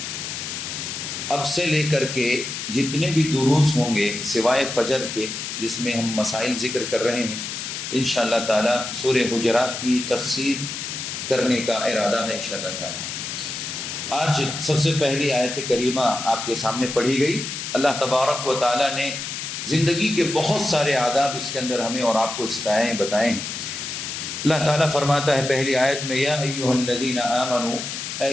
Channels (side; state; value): left; noise; hiss, 6 dB below the sound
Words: اب سے لے کر کے جتنے بھی دروس ہوں گے سوائے فجر کے جس میں ہم مسائل ذکر کر رہے ہیں، انشاءاللہ تعالی سورہ حجرات کی تفسیر کرنے کا ارادہ ہے انشاءاللہ تعالی. آج سب سے پہلی آیت کریمہ آپ کے سامنے پڑھی گئی. اللہ تبارک و تعالیٰ نے زندگی کے بہت سارے آداب اس کے اندر ہمیں اور آپ کو سکھائے ہیں، بتائیں ہیں. اللہ تعالیٰ فرماتا ہے پہلی آیت میں، یا ایہا الذین آمنوا، اے